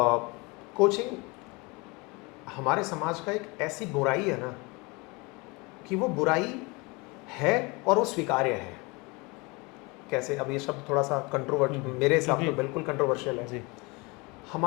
कोचिंग हमारे समाज का एक ऐसी बुराई है ना, कि वो बुराई है और वो स्वीकार्य है। कैसे? अब ये शब्द थोड़ा सा मेरे हिसाब तो बिल्कुल कंट्रोवर्शियल है। जी।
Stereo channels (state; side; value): quieter; right; 26.8 dB